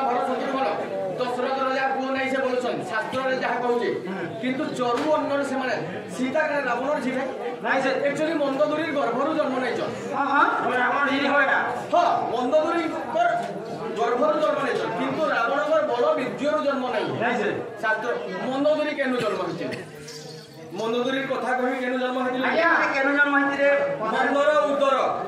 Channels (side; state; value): both; identical; correlation 1.00